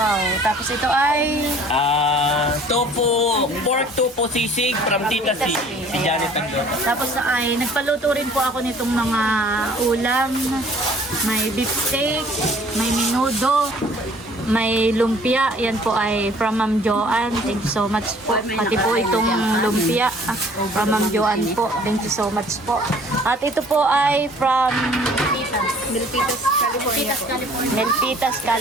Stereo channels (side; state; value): both; normal; correlation 0.54